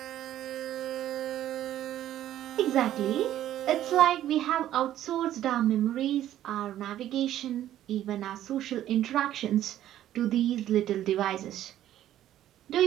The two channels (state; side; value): quieter; left; 12.4 dB